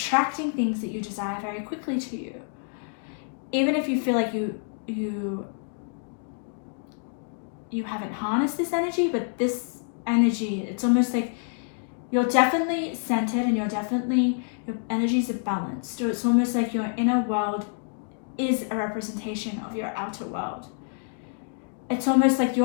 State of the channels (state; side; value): silent; right; 60 dB below the other